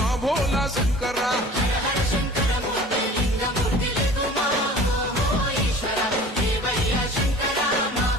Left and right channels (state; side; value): normal; both; correlation 0.43